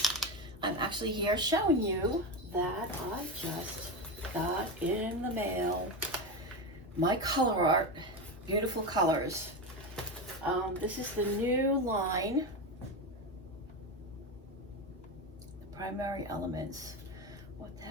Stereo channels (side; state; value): both; normal; correlation 0.17